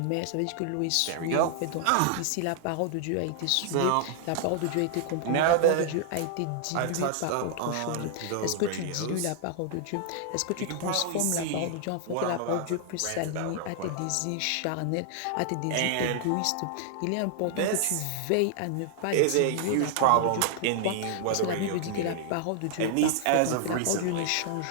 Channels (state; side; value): different; both; correlation 0.00